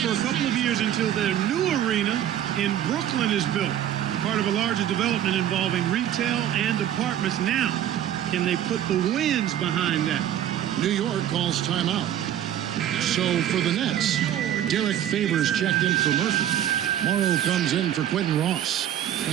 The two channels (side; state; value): left; quieter; 10.9 dB